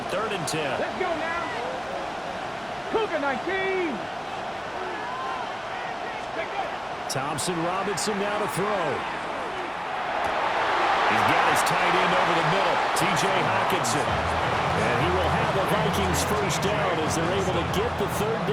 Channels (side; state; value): both; identical; correlation 1.00